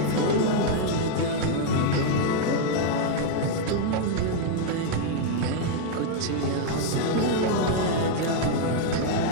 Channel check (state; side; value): different; both; correlation 0.00